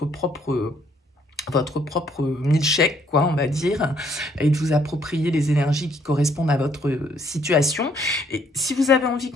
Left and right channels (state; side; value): normal; both; correlation 0.67